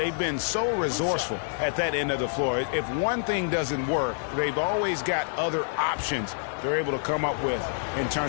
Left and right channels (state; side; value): silent; right; digital silence